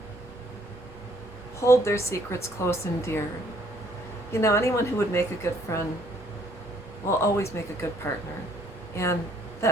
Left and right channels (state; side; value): noise; right; rumble, 22 dB below the sound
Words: hold their secrets close and dear. You know, anyone who would make a good friend will always make a good partner. And